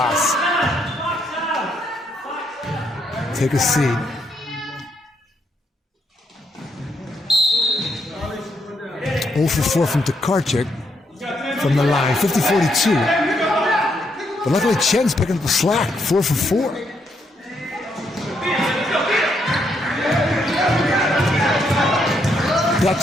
take a seat. Oh for 4 from Tokarczyk from the line, 50-42. But luckily Chen's picking up the slack, 4 for 4.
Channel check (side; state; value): both; normal; correlation 0.76